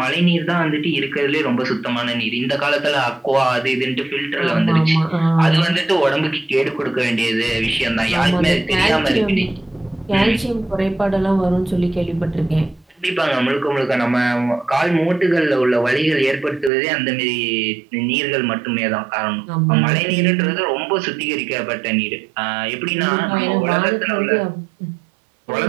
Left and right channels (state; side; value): drops out; left; at 16.7 s